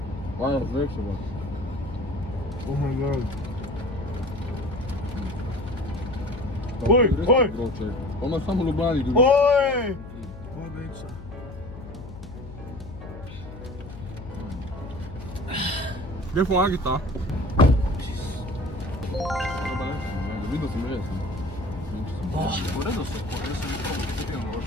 Vaja, zvek se bo. Oh my god. Oj! Pa ima samo Ljubljani drugi. Oj! Voda ica. Gdje pomagi ta? Videl sem res. V redu so, jaz sem nekaj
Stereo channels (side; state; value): left; noise; hum, 13 dB below the sound